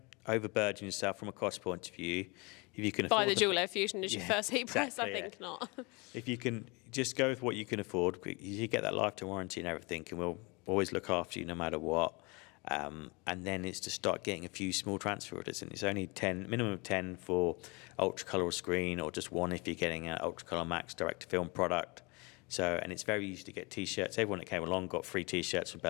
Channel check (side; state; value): right; quieter; 28.4 dB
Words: overburden yourself from a cost point of view. If you can afford buy the dual air fusion as your first heat press, I think not. If you can just go with what you can afford, you get that lifetime warranty and everything, and we'll always look after you no matter what. And then it's to start getting a few small transfer orders, and it's only 10, minimum of 10 for ultra color or screen, or just one if you're getting an ultra color max direct to film product. So, and it's very easy to get t-shirts. Everyone that came along got free t-shirts from